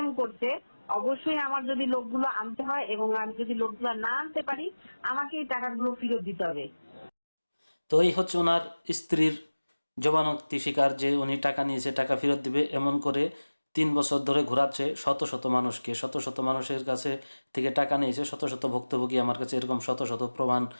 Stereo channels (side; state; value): both; inverted; correlation -1.00